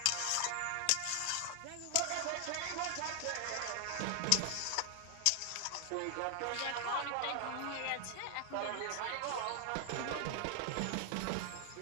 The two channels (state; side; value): different; both; correlation 0.00